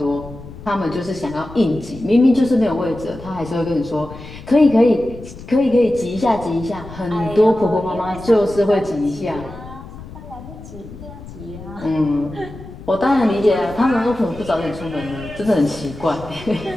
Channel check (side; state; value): left; noise; rumble, 15 dB below the sound